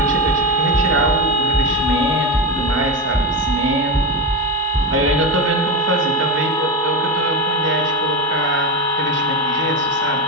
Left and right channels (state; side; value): normal; both; correlation 0.16